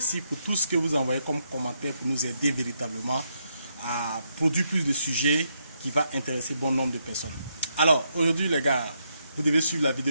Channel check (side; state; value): both; inverted; correlation -0.78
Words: pour tout ce que vous envoyez comme commentaires pour nous aider véritablement à produire plus de sujets qui vont intéresser bon nombre de personnes. Alors, aujourd'hui les gars, vous devez suivre la